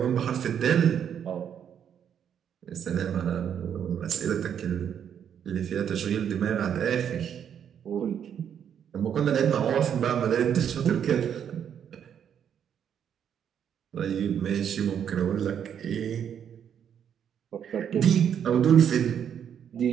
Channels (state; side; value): quieter; left; 8.6 dB